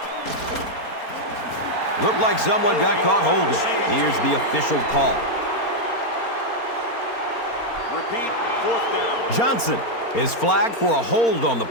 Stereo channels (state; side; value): late; right; 4.3 ms